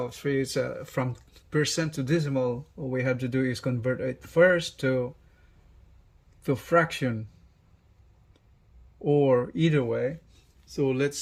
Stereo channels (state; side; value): identical; both; correlation 1.00